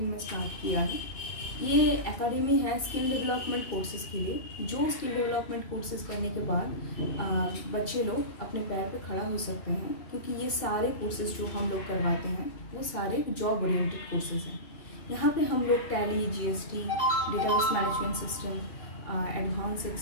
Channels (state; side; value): late; right; 2.6 ms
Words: में स्टार्ट किया है। ये एकेडमी है स्किल डेवलपमेंट कोर्सेज़ के लिए, जो स्किल डेवलपमेंट कोर्सेज़ करने के बाद बच्चे लोग अपने पैर पे खड़ा हो सकते हैं, क्योंकि ये सारे कोर्सेज़ जो हम लोग करवाते हैं वो सारे जॉब ओरिएंटेड कोर्सेज़ हैं। यहाँ पे हम लोग Tally, GST, database management system, advance